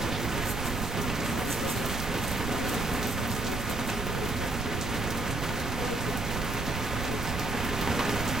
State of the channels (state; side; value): noise; right; rumble, 4 dB below the sound